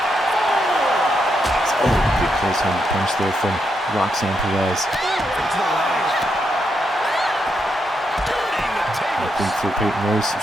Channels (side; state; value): both; normal; correlation 0.81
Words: Oh, big close hand punch there from Roxanne Perez. I think for Peyton Royce,